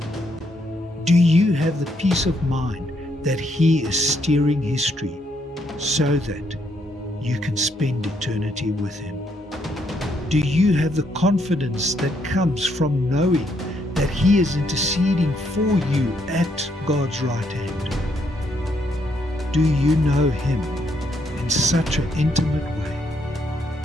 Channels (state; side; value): normal; both; correlation 0.74